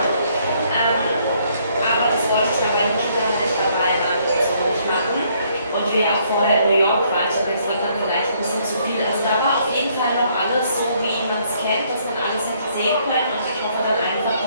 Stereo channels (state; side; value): inverted; both; correlation -0.67